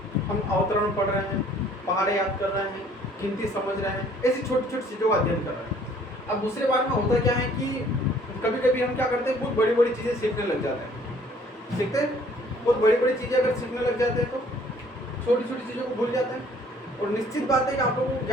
हम अवतरण पढ़ रहे हैं, पहाड़े याद कर रहे हैं, गिनती समझ रहे हैं, ऐसी छोटी छोटी चीज़ों का अध्ययन कर रहे हैं। अब दूसरे बार में होता क्या है कि कभी कभी हम क्या करते हैं, बहुत बड़ी बड़ी चीज़ें सीखने लग जाते हैं। सीखते हैं बहुत बड़ी बड़ी चीज़ें अगर सीखने लग जाते हैं तो छोटी छोटी चीज़ों को भूल जाते हैं। और निश्चित बात है कि आप लोगों को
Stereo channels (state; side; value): normal; both; correlation 0.58